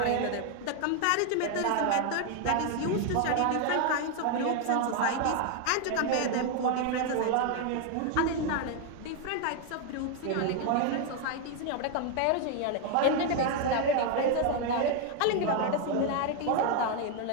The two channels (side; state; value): both; different; correlation 0.01